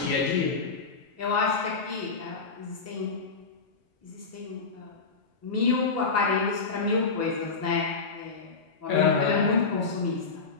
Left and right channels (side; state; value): right; quieter; 4.6 dB